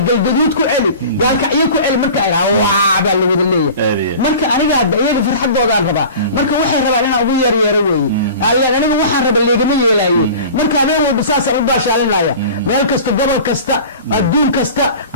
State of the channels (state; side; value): inverted; both; correlation -0.39